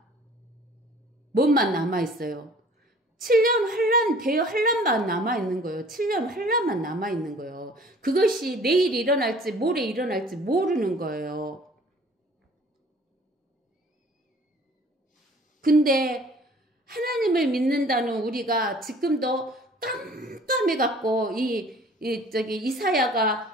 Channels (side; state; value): both; normal; correlation 0.51